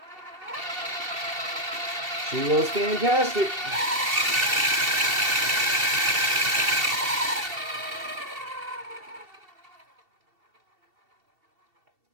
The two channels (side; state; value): left; late; 2.7 ms